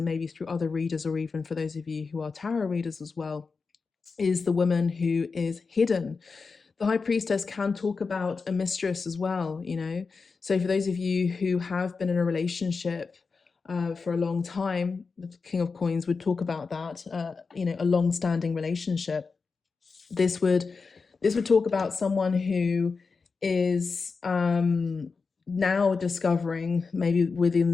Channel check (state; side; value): quieter; right; 4.7 dB